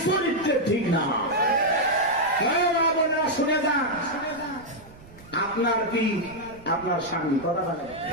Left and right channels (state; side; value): noise; right; rumble, 22 dB below the sound